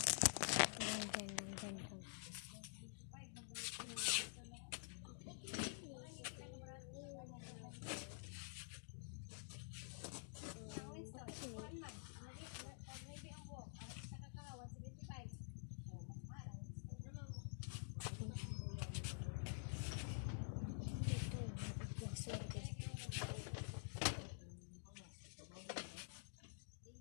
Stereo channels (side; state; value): right; silent; digital silence